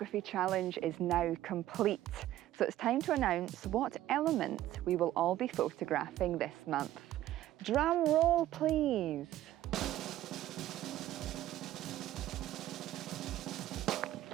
challenge is now complete, so it's time to announce what element we will all be photographing this month. Drum roll, please.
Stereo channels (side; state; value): left; quieter; 13.8 dB